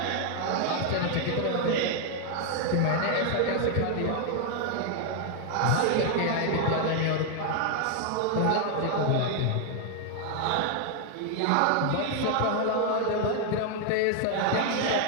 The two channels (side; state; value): both; different; correlation 0.00